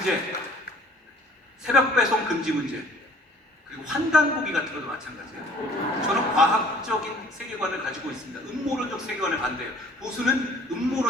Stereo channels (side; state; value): both; normal; correlation 0.53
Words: 새벽 배송 금지 문제, 그리고 환단고기 같은 것도 마찬가지예요. 저는 과학적인 세계관을 가지고 있습니다. 음모론적 세계관을 반대해요. 보수는